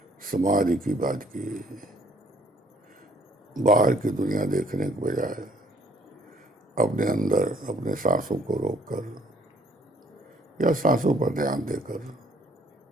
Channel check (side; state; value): both; normal; correlation 0.61